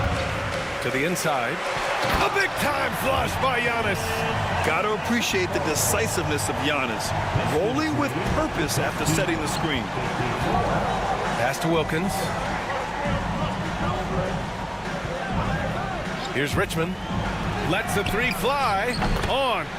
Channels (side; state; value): both; identical; correlation 1.00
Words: To the inside. A big-time flush by Giannis. Got to appreciate the decisiveness of Giannis. Rolling with purpose after setting the screen. Pass to Wilkins. Here's Richmond. Lets the 3 fly. On